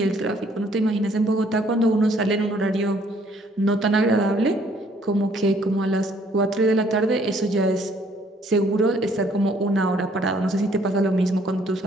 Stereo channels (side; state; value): both; normal; correlation 0.63